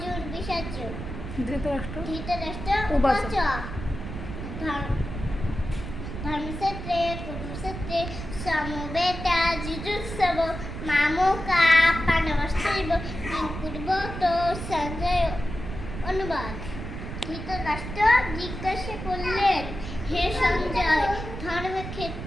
বিষাদ। ধৃতরাষ্ট্র উবাচ। ধর্মক্ষেত্রে কুরুক্ষেত্রে সমবেতা যুযুৎসব মামকা পাণ্ডবশ্চৈব কিং কুর্বত সঞ্জয়। অনুবাদ। ধৃতরাষ্ট্র জিজ্ঞাসা করলেন, হে সঞ্জয়,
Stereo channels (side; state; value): right; noise; rumble, 8 dB below the sound